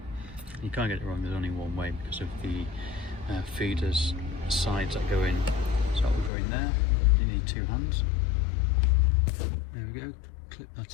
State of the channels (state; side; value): drops out; right; at 6.3 s